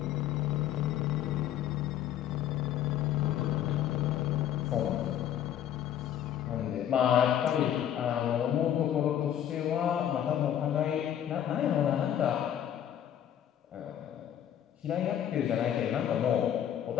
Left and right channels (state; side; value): quieter; right; 10.4 dB